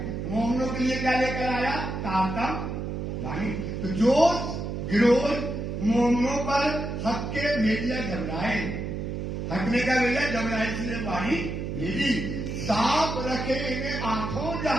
मोहनों के लिए क्या लेकर आया? तारतम वाणी। तो जोश गिरोह मोहनों पर हक के भेजिया घबराए। हकने का भेजा घबराई से वाणी भेजी। सांप रखे इन्हें आंखों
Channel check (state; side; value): noise; right; hum, 4 dB below the sound